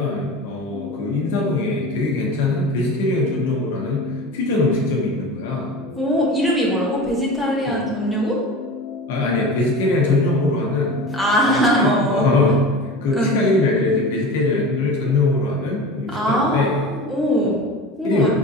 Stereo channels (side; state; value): both; normal; correlation 0.32